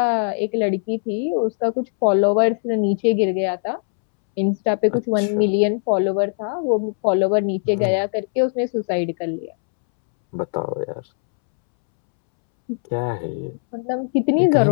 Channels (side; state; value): right; silent; 65 dB below the other